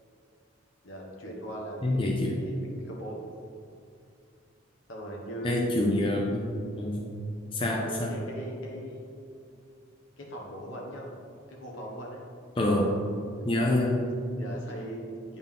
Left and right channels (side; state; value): both; normal; correlation 0.64